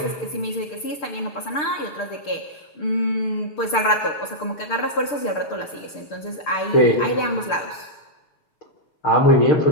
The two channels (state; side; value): late; right; 6.7 ms